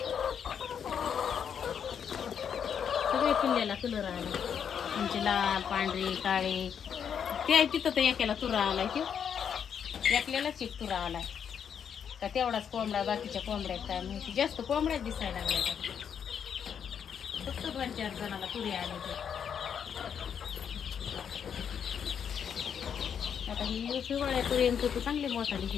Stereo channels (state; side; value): quieter; right; 7.8 dB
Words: सगळे पिल्ल्याला कलर आला, म्हणजे लाल, पांढरे, काळे. ते तिथं तर एकाला तुरा आलाय, ते एकल्यालाच 1 तुरा आलाय का तेवढाच कोंबडा, बाकीच्या कोंबड्यात काय माहिती. जास्त कोंबड्यात दिसायला लागल्या, फक्त 2-4 जणाला तुरे आले. ते आता ही शिवाळ्यापर्यंत तर चांगले मोठा